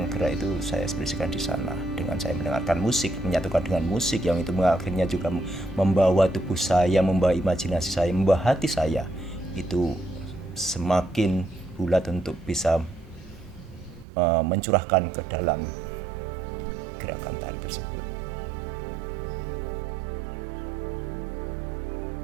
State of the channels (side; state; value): left; drops out; at 14.1 s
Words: gerak itu saya ekspresikan di sana. Dengan saya mendengarkan musik, menyatukan dengan musik yang itu akhirnya juga membawa tubuh saya, membawa imajinasi saya, membawa hati saya itu semakin bulat untuk bisa mencurahkan ke dalam gerakan tari tersebut.